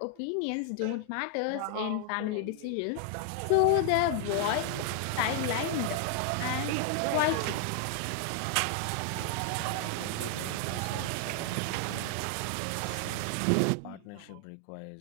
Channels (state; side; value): different; both; correlation 0.00